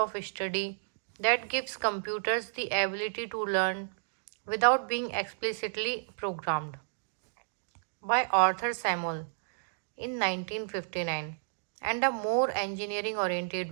study that gives computers the ability to learn without being explicitly programmed. By Arthur Samuel in 1959, and a more engineering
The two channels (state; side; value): silent; left; digital silence